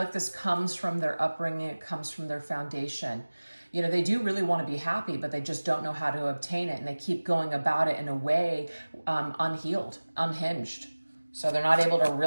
this comes from their upbringing. It comes from their foundation. You know, they do really want to be happy, but they just don't know how to obtain it. And they keep going about it in a way unhealed, unhinged. So they're not able to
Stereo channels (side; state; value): both; inverted; correlation -1.00